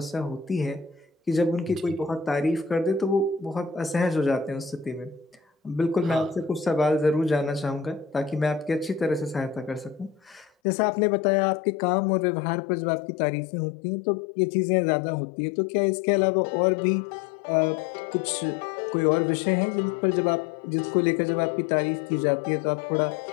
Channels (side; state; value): right; drops out; at 10.5 s